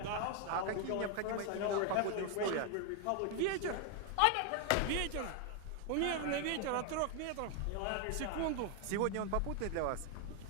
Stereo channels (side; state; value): both; different; correlation 0.01